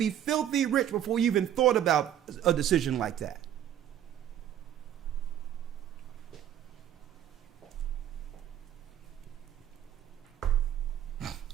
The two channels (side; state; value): left; quieter; 10.7 dB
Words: filthy rich before you even thought about a decision like that.